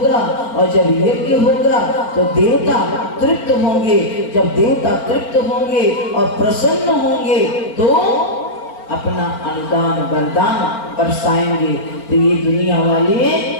और जब यज्ञ होगा तो देवता तृप्त होंगे। जब देवता तृप्त होंगे और प्रसन्न होंगे तो अपना अनुदान वरदान बरसाएंगे, तो ये दुनिया वाले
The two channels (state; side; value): late; right; 4.5 ms